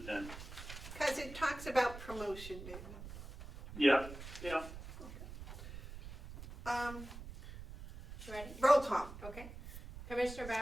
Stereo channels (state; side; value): noise; right; rumble, 12 dB below the sound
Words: it then. Because it talks about promotion, David. Yeah. You ready? Roll call. Okay. Commissioner